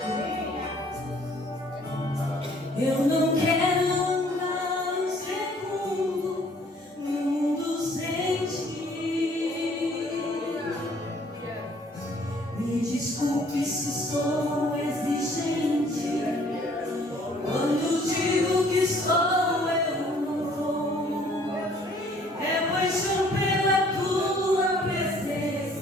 desculpe se sou exigente. Quando digo que sou, eu não vou. É paixão pela tua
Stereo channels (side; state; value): both; normal; correlation 0.59